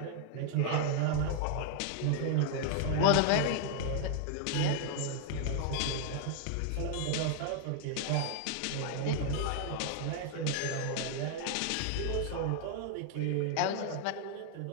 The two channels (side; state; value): both; different; correlation 0.00